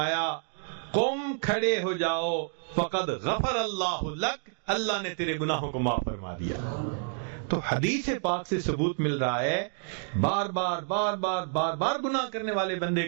قم، کھڑے ہو جاؤ، فقد غفر اللہ لک، اللہ نے تیرے گناہوں کو معاف فرما دیا. تو حدیث پاک سے ثبوت مل رہا ہے بار بار بار بار بار بار گناہ کرنے والے بندے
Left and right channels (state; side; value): silent; left; 59 dB below the other